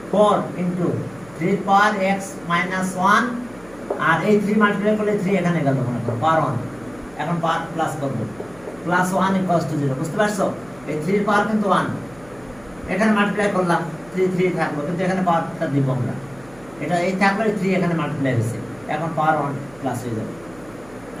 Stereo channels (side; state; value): right; noise; hum, 25 dB below the sound